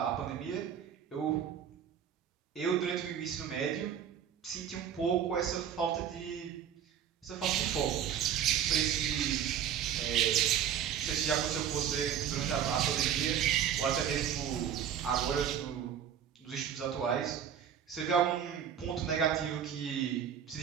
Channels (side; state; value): left; quieter; 9.0 dB